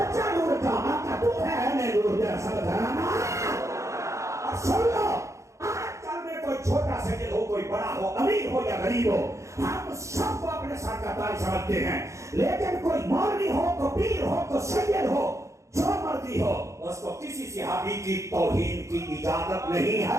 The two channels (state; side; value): late; left; 0.15 ms